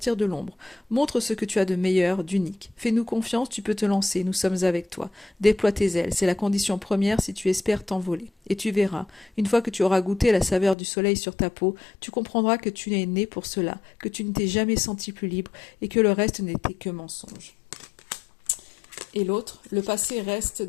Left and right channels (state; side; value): drops out; right; at 10.8 s